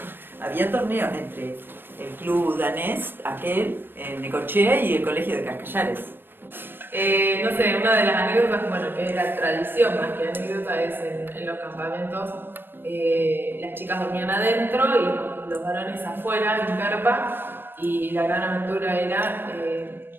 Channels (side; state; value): left; late; 0.10 ms